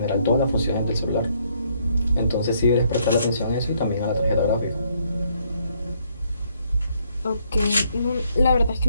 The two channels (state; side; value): inverted; both; correlation -0.70